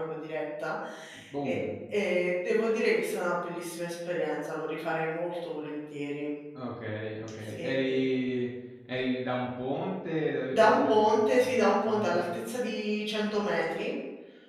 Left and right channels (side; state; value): both; identical; correlation 1.00